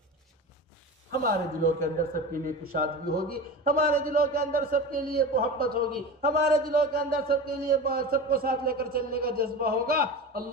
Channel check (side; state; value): both; normal; correlation 0.29